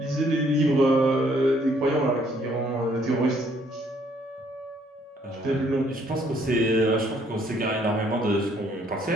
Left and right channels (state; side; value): normal; both; correlation 0.65